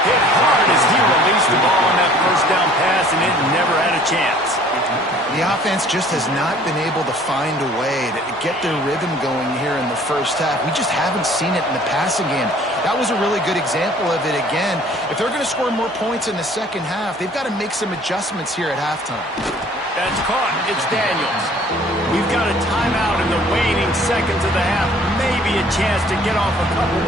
Hit hard as he released the ball on that 1st down pass, and it never had a chance. The offense just has not been able to find a way to get their rhythm going here in the 1st half. We just haven't seen it in the passing game. That was a really good example of it again. If they're going to score more points in the 2nd half, they've got to make some adjustments here at halftime. That's caught. It's Daniels. We've got a timeout in the waning seconds of the half. Maybe a chance to get off a couple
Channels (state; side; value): normal; both; correlation 0.54